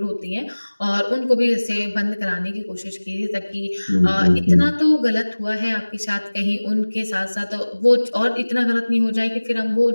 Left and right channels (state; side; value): inverted; both; correlation -1.00